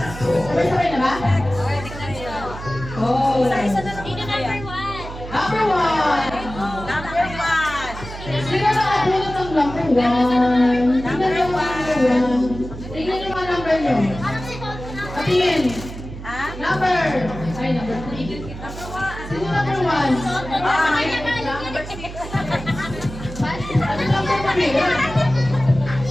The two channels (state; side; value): noise; right; hum, 11 dB below the sound